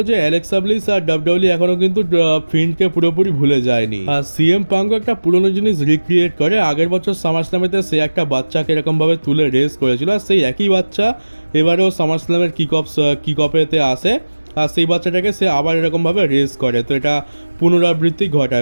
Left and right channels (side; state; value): both; inverted; correlation -1.00